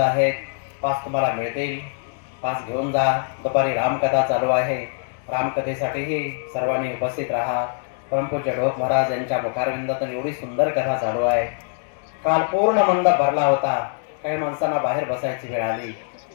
पास तुम्हाला मिळतील, पास घेऊन जा. दुपारी रामकथा चालू आहे, रामकथेसाठीही सर्वांनी उपस्थित राहा. परमपूज्य ढोक महाराज यांच्या मुखारविंदातून एवढी सुंदर कथा चालू आहे. काल पूर्ण मंडप भरला होता, काही माणसांना बाहेर बसायची वेळ आली.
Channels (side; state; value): right; silent; digital silence